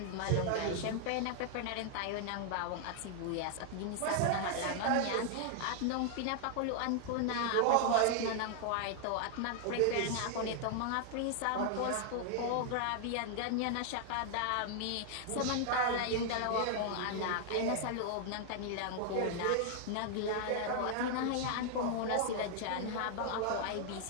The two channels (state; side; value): different; both; correlation -0.01